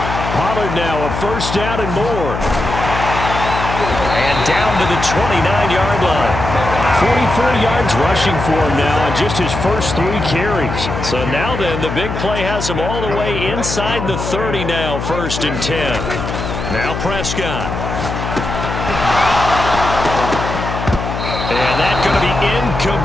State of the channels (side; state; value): left; noise; hum, 5 dB below the sound